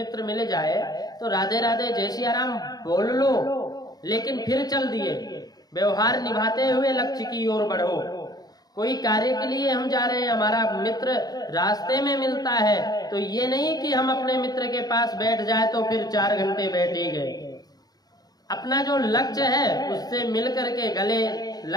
मिल जाए तो राधे राधे जय सिया राम बोल लो, लेकिन फिर चल दिए। व्यवहार निभाते हुए लक्ष्य की ओर बढ़ो। कोई कार्य के लिए हम जा रहे हैं, हमारा मित्र रास्ते में मिलता है तो ये नहीं कि हम अपने मित्र के पास बैठ जाए तो फिर 4 घंटे बैठे गए। अपना जो लक्ष्य है उससे मिल करके गले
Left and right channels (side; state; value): right; late; 0.19 ms